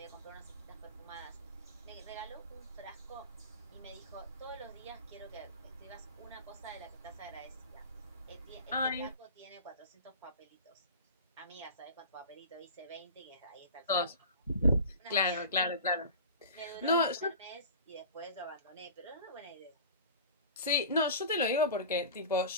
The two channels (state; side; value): inverted; both; correlation -0.36